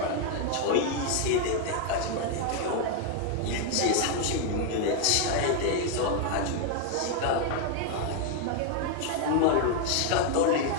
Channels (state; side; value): different; both; correlation 0.00